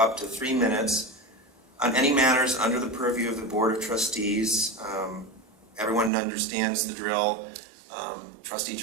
to 3 minutes on any matters under the purview of the Board of Trustees. Everyone understands the drill. Trustee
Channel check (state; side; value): drops out; left; at 6.1 s